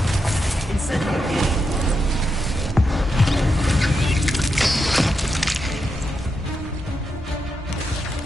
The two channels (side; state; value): both; normal; correlation 0.85